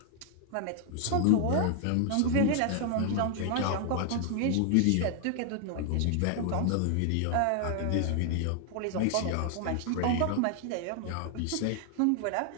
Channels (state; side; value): different; both; correlation 0.00